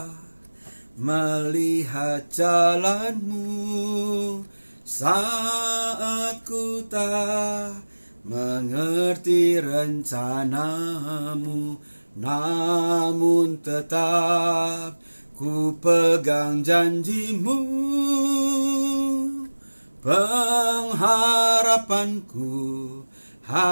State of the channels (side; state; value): both; inverted; correlation -1.00